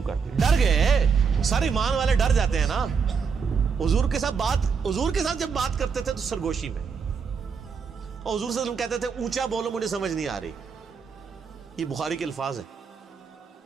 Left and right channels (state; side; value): quieter; left; 5.9 dB